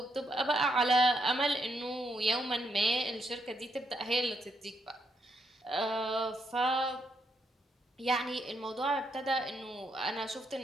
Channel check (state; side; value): normal; both; correlation 0.78